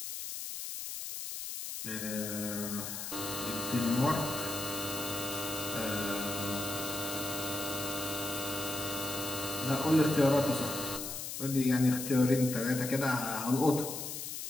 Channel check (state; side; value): noise; left; hiss, 6 dB below the sound